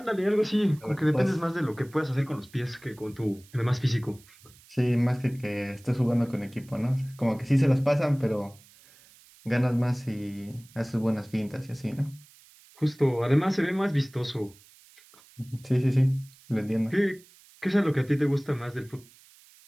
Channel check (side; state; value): right; noise; hiss, 26 dB below the sound